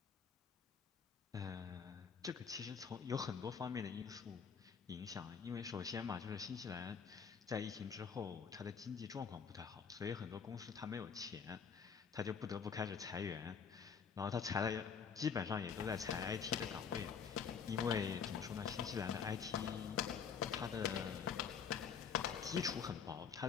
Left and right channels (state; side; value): quieter; right; 6.6 dB